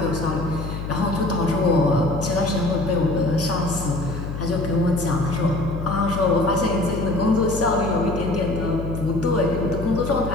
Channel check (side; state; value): left; noise; hum, 6 dB below the sound